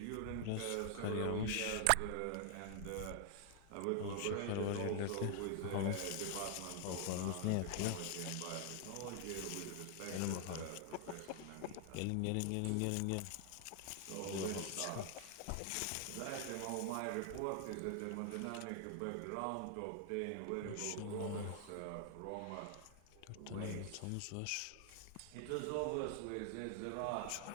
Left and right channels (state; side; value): different; both; correlation 0.00